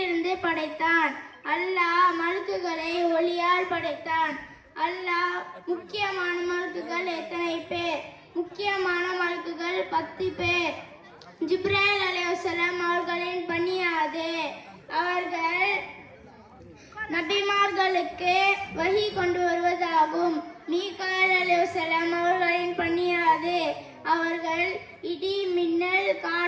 படைத்தான்? அல்லாஹ் மலக்குகளை ஒளியால் படைத்தான். அல்லாஹ் முக்கியமான மலக்குகள் எத்தனை பேர்? முக்கியமான மலக்குகள் 10 பேர். ஜிப்ராயில் அலைஹிஸ்ஸலாம் அவர்களின் பணி அது. அவர்கள் நபிமார்களுக்கு வஹி கொண்டு வருவதாகும். மீகாயில் அலைஹிஸ்ஸலாம் அவர்களின் பணி அது. அவர்கள் இடி, மின்னல்,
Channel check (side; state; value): both; identical; correlation 1.00